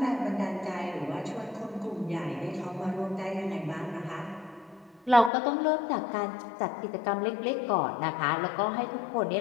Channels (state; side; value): drops out; right; at 5.3 s